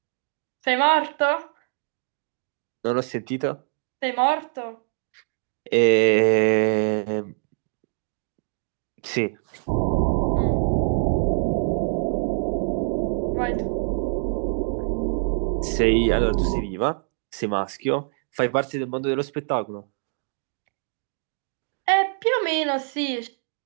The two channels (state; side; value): silent; left; 61 dB below the other